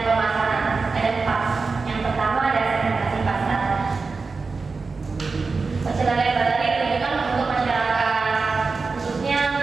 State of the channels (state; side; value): quieter; left; 4.3 dB